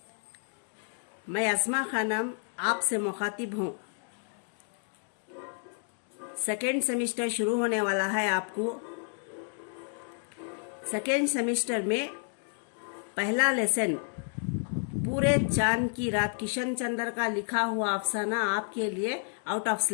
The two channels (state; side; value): silent; right; 57 dB below the other